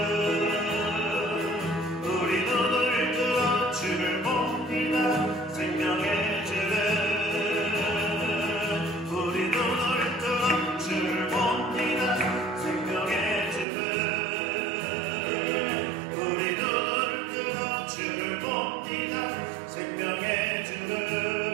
우리 눈을 뜨어 주를 봅니다. 생명의 주를 우리 눈을 뜨어 주를 봅니다. 생명의 주를 우리 눈을 뜨어 주를 봅니다. 생명의 주를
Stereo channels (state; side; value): drops out; left; at 13.7 s